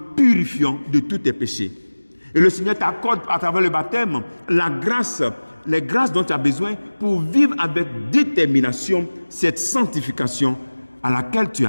purifiant de tous tes péchés. Et le Seigneur t'accorde à travers le baptême la grâce, les grâces dont tu as besoin pour vivre avec détermination cette sanctification à laquelle tu es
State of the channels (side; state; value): both; inverted; correlation -1.00